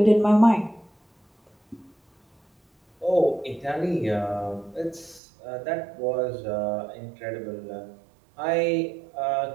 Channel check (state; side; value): drops out; left; at 5.2 s